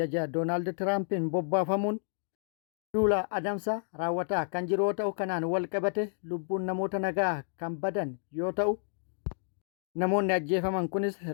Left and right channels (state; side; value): silent; right; digital silence